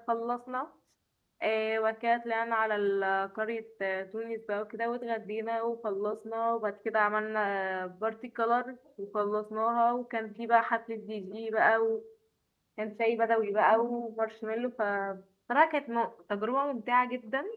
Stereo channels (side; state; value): both; identical; correlation 1.00